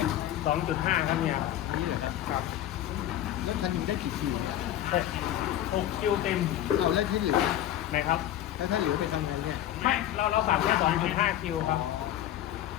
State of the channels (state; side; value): quieter; right; 12.4 dB